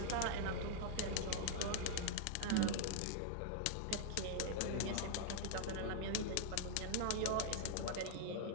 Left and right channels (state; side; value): different; both; correlation -0.01